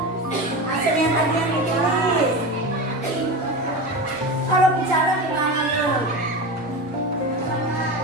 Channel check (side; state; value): both; normal; correlation 0.24